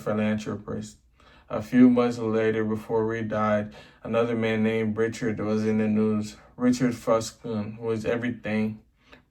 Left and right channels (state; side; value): identical; both; correlation 1.00